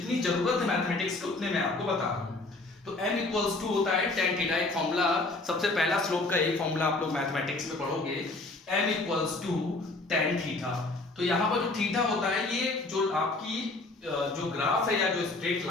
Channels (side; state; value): right; quieter; 3.1 dB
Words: जरूरत है मैथमेटिक्स की उतने मैं आपको बता रहा हूँ। तो m होता है tan थीटा। एक फॉर्मूला, सबसे पहला स्लोप का एक फॉर्मूला आप लोग मैथमेटिक्स में पढ़ोगे, m tan थीटा। तो यहाँ पर जो थीटा होता है, ये जो आपकी जो ग्राफ है या जो स्ट्रेट